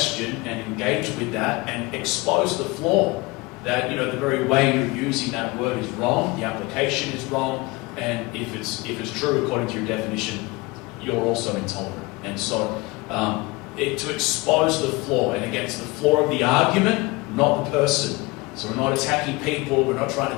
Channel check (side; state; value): right; quieter; 23.5 dB